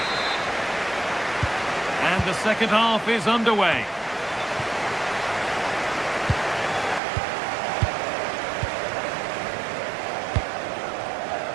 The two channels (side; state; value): left; drops out; at 7.0 s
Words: And the second half is underway.